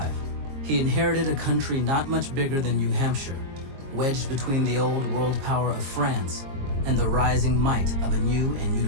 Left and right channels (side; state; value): left; late; 22 ms